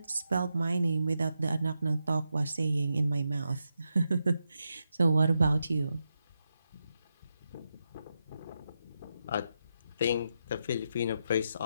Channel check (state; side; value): inverted; both; correlation -0.86